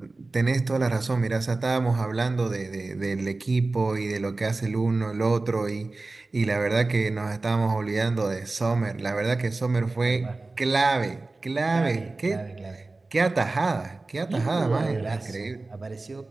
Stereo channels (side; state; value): left; quieter; 3.3 dB